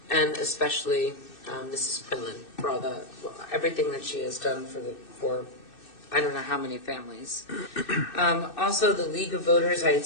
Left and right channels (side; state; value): right; late; 2.6 ms